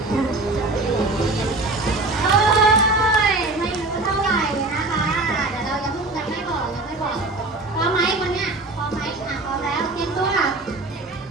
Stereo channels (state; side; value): quieter; left; 3.0 dB